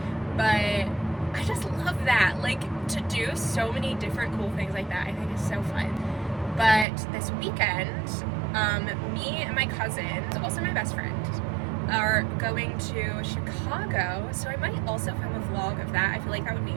but I just love that. Like, to do so many different cool things like that, I think is so fun. But this weekend, me and my cousin, also my best friend, are going to Chicago, so I might also film a vlog of that. I feel like that would be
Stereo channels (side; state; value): left; drops out; at 6.9 s